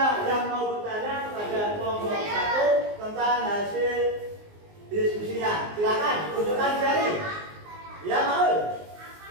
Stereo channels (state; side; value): late; left; 19 ms